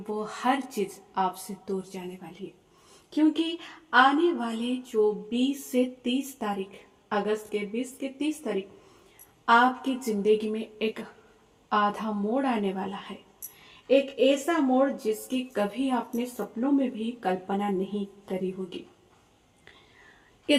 हर चीज आपसे दूर जाने वाली है, क्योंकि आने वाले जो 20 से 30 तारीख, अगस्त के 20 के 30 तारीख, आपकी जिंदगी में एक आधा मोड़ आने वाला है। एक ऐसा मोड़ जिसकी कभी आपने सपनों में भी कल्पना नहीं करी होगी।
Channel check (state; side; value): identical; both; correlation 1.00